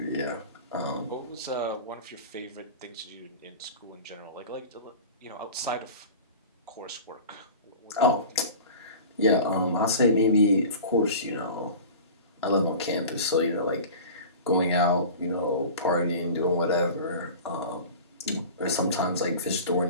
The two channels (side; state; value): both; inverted; correlation -0.36